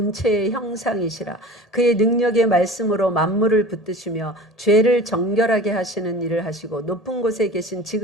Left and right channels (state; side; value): normal; both; correlation 0.39